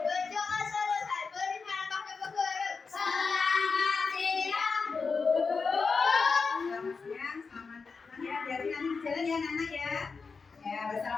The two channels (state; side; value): quieter; right; 4.8 dB